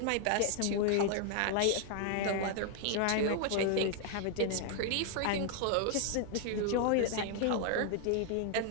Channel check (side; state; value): both; different; correlation 0.00